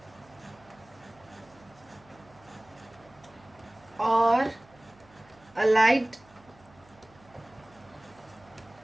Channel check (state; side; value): noise; right; hum, 27 dB below the sound